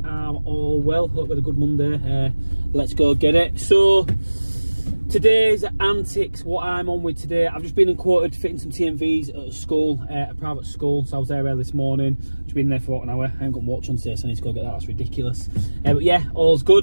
are all well, hope we had a good Monday. Let's go get it. So today's antics, what I'm on with today, I've just been quoted fitting some TMVs at a school, a private school, so I was there early this morning. Just been there for about an hour. I haven't got watch on today, so I need to go get that. That's ridiculous. But yeah, all's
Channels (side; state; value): both; inverted; correlation -1.00